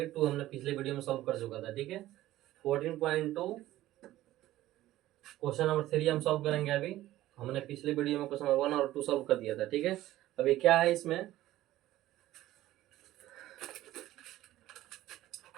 2 हमने पिछले वीडियो में सॉल्व कर चुका था। ठीक है, 14.2 क्वेश्चन नंबर 3 हम सॉल्व करेंगे। अभी हमने पिछले वीडियो में क्वेश्चन नंबर 1 और 2 सॉल्व कर दिया था। ठीक है, अभी क्या है इसमें,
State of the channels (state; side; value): quieter; left; 15.1 dB